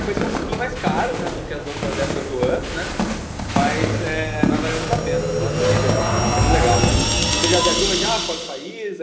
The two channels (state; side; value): identical; both; correlation 1.00